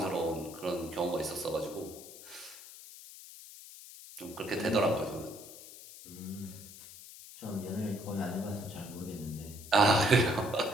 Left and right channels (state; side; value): noise; left; hiss, 16 dB below the sound